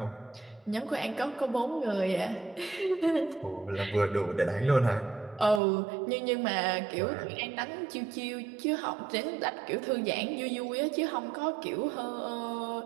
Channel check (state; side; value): drops out; left; at 5.6 s